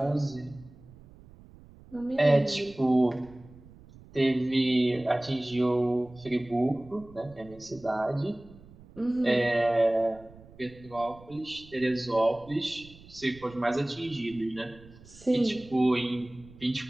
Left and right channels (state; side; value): noise; right; rumble, 22 dB below the sound